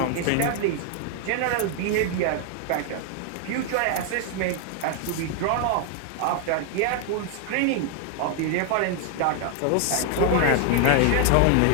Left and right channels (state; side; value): different; both; correlation 0.00